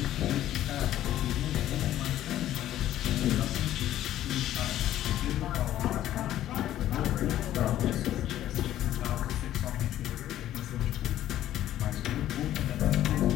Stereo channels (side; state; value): right; quieter; 12.8 dB